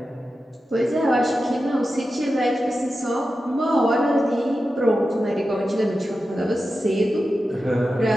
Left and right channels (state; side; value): normal; both; correlation 0.92